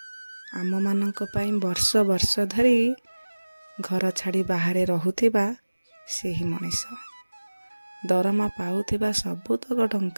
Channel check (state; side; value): inverted; both; correlation -1.00